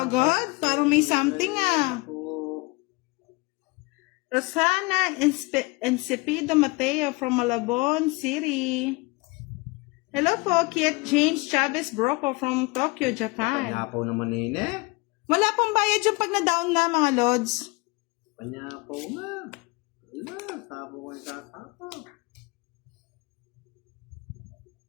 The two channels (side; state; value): right; quieter; 25.6 dB